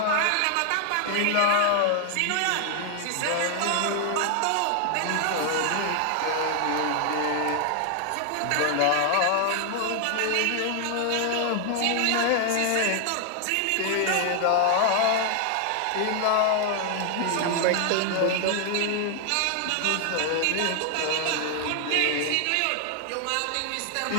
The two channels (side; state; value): both; different; correlation 0.00